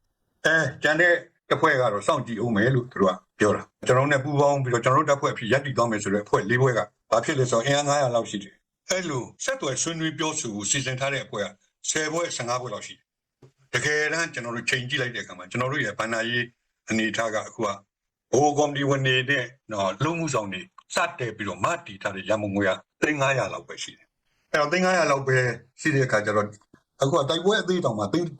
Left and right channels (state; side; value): identical; both; correlation 1.00